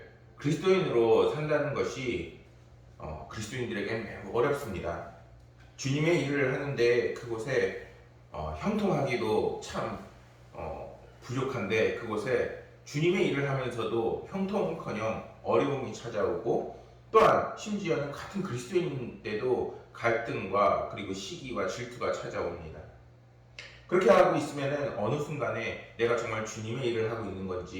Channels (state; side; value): identical; both; correlation 1.00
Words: 그리스도인으로 산다는 것이 그리스도인들에게는 매우 어렵습니다. 주님의 일을 하는데 그곳에 형통하기도 참 부족한데 그곳에 주님의 일을 하면서도 형통은커녕 어려움이 찾아오고 또한 심지어는 같은 그리스도인인데도 갈등과 그리고 시기와 질투가 찾아옵니다. 그렇게 하고 있으면 어느 순간에 내가 정말 주님의 일을 하고 있는